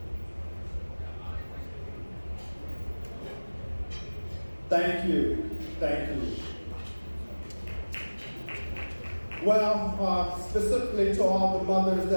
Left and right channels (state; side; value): inverted; both; correlation -1.00